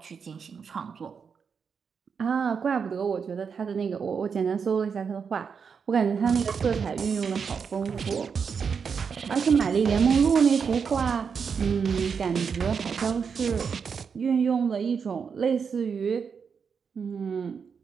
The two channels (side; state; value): left; quieter; 6.2 dB